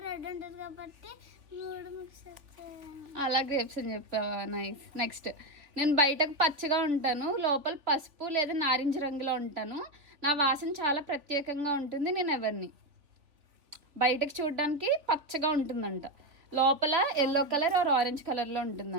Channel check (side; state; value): left; late; 3.5 ms